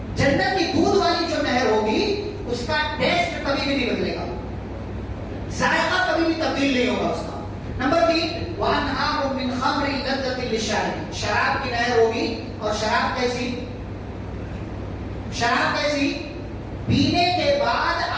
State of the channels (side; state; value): both; identical; correlation 1.00